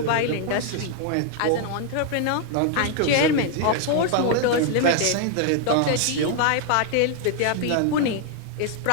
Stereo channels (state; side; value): different; both; correlation 0.00